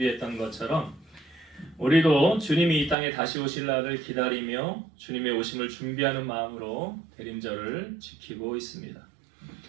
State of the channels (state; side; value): drops out; left; at 3.0 s